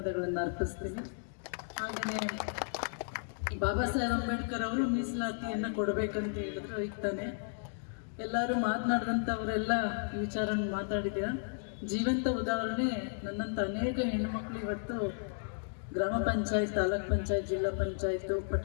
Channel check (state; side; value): silent; right; digital silence